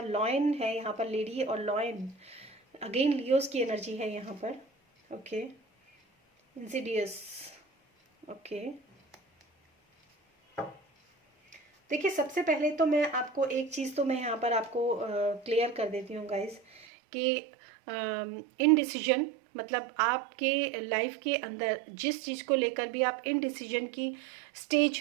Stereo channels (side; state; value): left; drops out; at 16.9 s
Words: लॉयन है यहाँ पर, लेडी और लॉयन, अगेन लियोज की एनर्जी है यहाँ पर, ओके। Insidious, okay. देखिए सबसे पहले तो मैं आपको एक चीज़ तो मैं यहाँ पर आपको क्लियर कर देती हूँ गाइज कि इनडिसीजन मतलब आपके लाइफ के अंदर जिस चीज़ को लेकर भी आप इनडिसीजन की